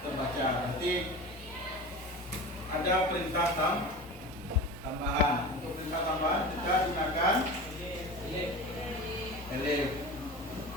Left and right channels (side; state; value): both; normal; correlation 0.32